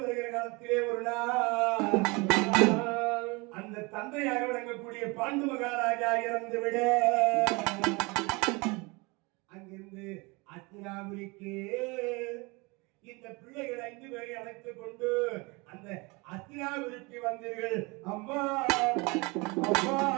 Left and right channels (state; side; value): quieter; left; 26.9 dB